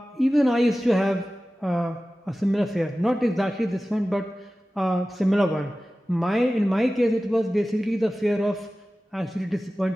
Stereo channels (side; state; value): both; normal; correlation 0.96